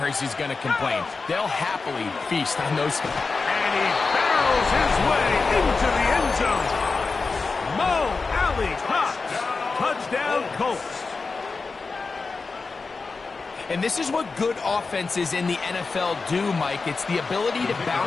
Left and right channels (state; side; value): quieter; right; 4.2 dB